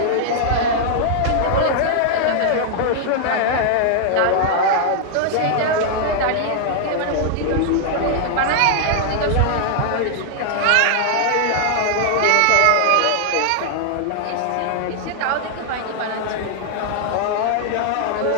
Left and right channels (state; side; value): different; both; correlation -0.01